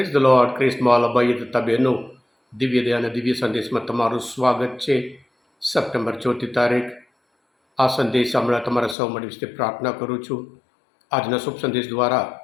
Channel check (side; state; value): right; drops out; at 9.0 s